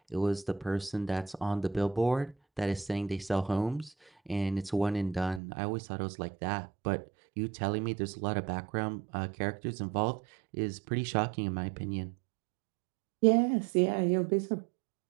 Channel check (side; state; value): left; drops out; at 5.4 s